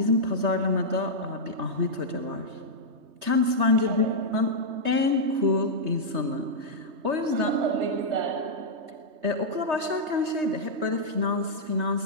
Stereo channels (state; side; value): late; left; 3.2 ms